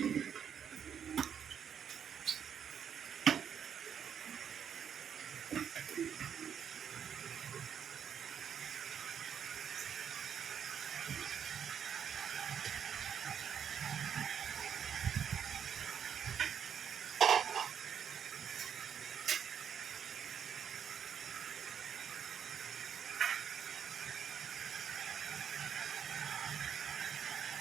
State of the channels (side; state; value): left; quieter; 8.1 dB